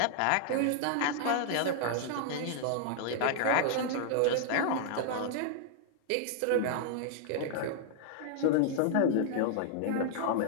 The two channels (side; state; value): both; different; correlation -0.01